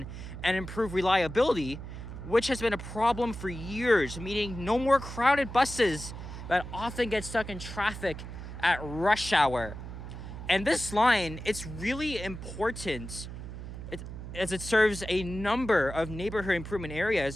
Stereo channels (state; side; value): noise; right; hum, 10 dB below the sound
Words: and improve reliability, which has been a problem for years, meaning no more crowded buses that often get stuck in traffic at rush hour. And this line, it's really important as it serves a number of neighborhood improvement